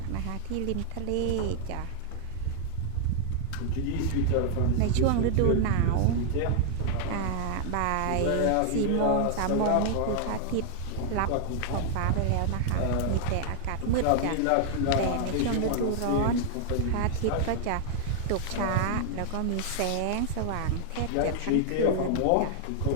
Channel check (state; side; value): different; both; correlation 0.00